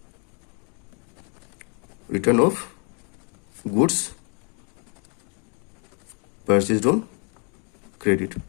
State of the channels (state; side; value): quieter; right; 37.4 dB